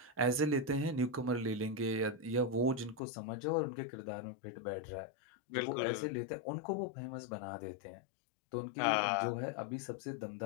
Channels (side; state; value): right; drops out; at 3.0 s